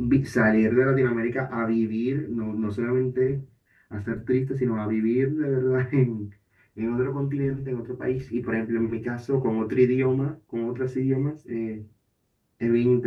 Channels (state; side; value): identical; both; correlation 1.00